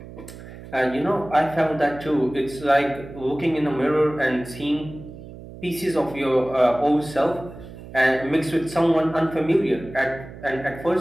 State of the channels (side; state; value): right; noise; hum, 15 dB below the sound